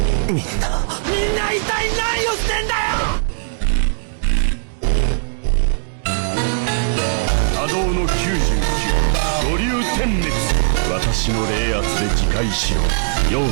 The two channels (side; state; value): left; silent; digital silence